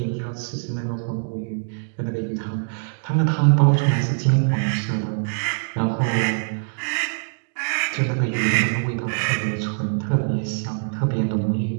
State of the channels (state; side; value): silent; left; digital silence